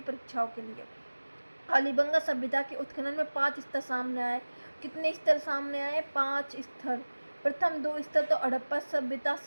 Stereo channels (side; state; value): both; inverted; correlation -1.00